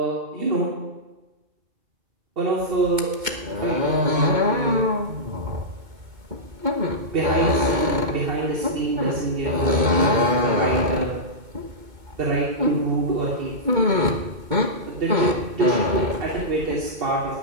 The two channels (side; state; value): left; late; 2.2 ms